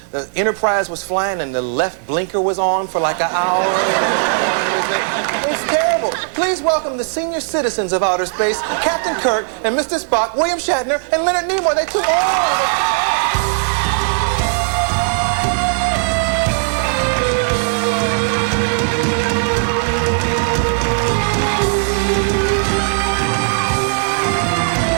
the Enterprise was flying and the left blinker was on for like an hour? It's terrible. Please welcome the senior citizens of outer space, Captain Kirk and Mr. Spock, William Shatner, and Leonard Nimoy. They're too old.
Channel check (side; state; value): left; silent; 64 dB below the other